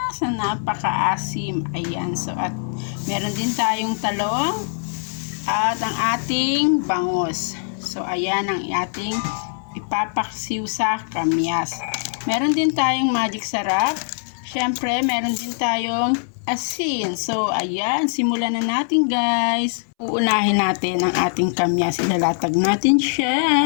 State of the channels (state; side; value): silent; right; 64 dB below the other